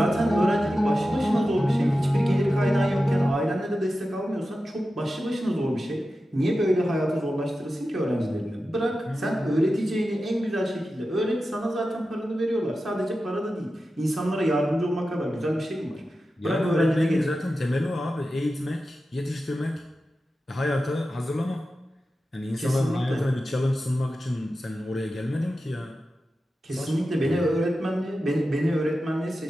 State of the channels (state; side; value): normal; both; correlation 0.92